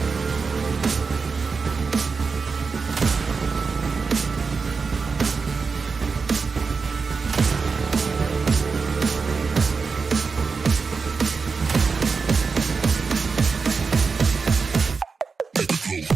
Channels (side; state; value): left; quieter; 4.9 dB